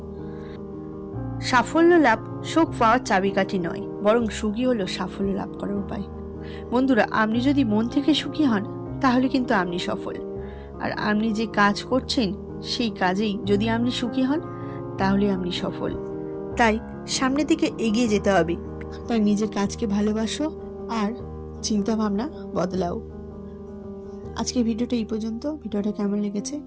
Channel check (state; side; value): identical; both; correlation 1.00